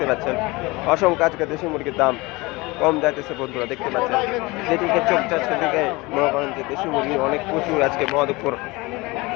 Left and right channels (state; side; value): quieter; right; 23.3 dB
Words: পাচ্ছেন। অসংখ্য আজকে দেশি মুরগির দাম কম যাইতেছে বন্ধুরা দেখতে পাচ্ছেন। যেদিকে চোখ যাচ্ছে সেদিকে মনে করেন যে দেশি মুরগি অনেক প্রচুর আজকে মহাদেবপুর